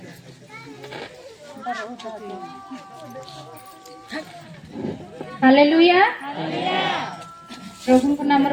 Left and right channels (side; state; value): both; identical; correlation 1.00